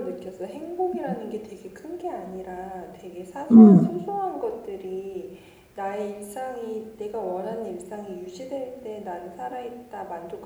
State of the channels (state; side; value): identical; both; correlation 1.00